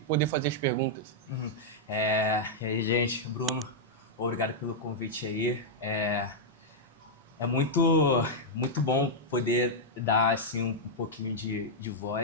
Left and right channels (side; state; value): both; normal; correlation -0.04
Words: poder fazer as perguntas. E aí, gente, Bruno, obrigado pelo convite aí. É muito bom poder dar assim, um pouquinho de